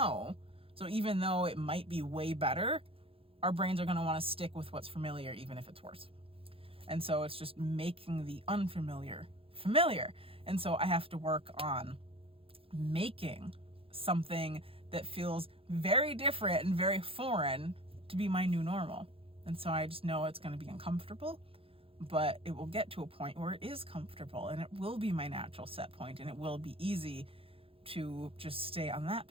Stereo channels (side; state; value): left; late; 0.27 ms